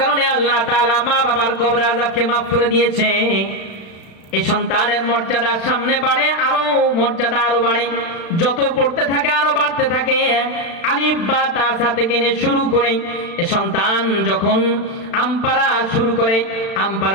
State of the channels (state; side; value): late; right; 36 ms